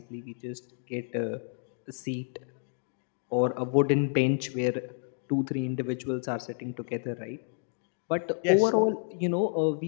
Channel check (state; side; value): silent; right; digital silence